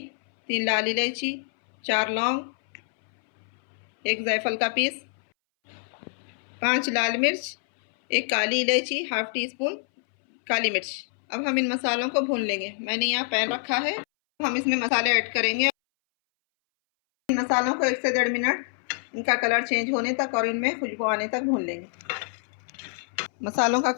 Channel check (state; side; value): silent; right; 61 dB below the other